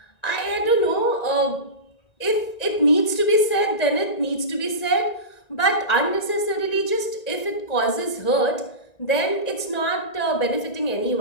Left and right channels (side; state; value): right; late; 1.9 ms